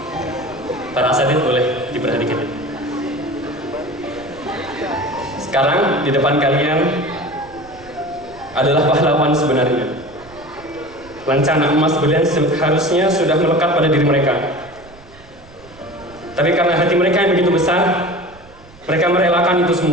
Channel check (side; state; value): right; noise; rumble, 23 dB below the sound